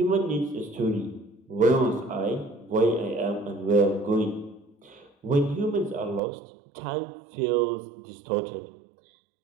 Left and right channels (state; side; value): drops out; left; at 6.2 s